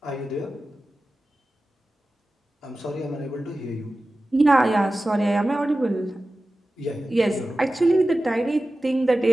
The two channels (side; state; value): both; normal; correlation 0.95